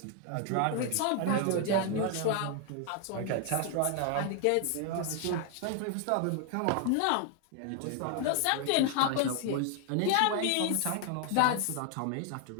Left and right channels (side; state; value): both; different; correlation 0.00